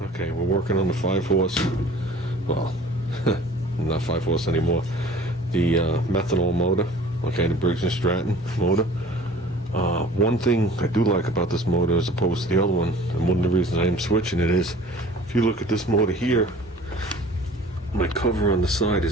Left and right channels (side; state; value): both; normal; correlation 0.47